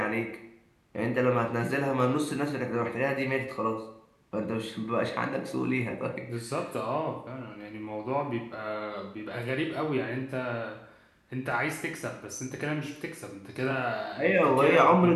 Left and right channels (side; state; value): both; identical; correlation 1.00